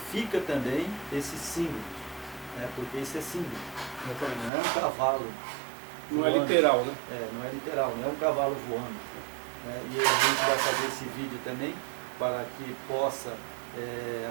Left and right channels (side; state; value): left; drops out; at 4.5 s